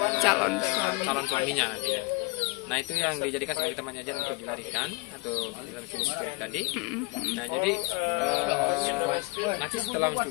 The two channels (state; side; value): quieter; right; 25.1 dB